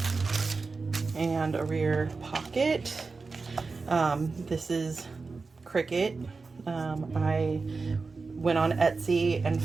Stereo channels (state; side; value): quieter; left; 4.2 dB